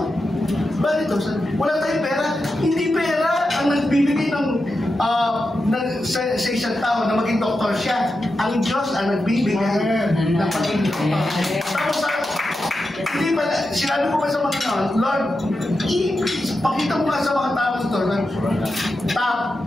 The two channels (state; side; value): normal; both; correlation 0.89